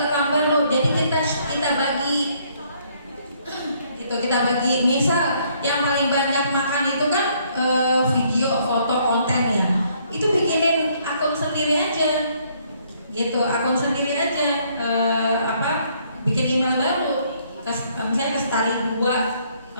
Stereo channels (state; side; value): inverted; both; correlation -0.67